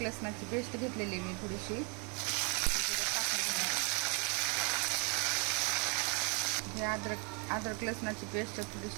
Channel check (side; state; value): left; quieter; 34.8 dB